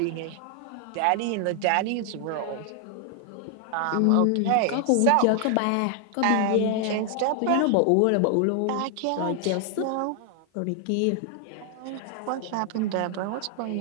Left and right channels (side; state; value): both; different; correlation 0.00